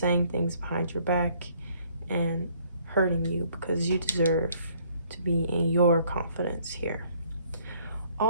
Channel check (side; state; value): both; inverted; correlation -0.63